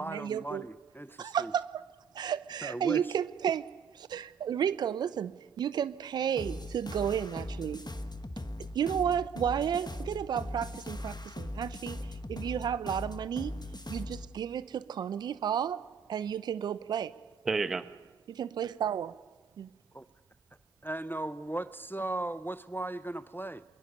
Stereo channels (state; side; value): quieter; left; 6.3 dB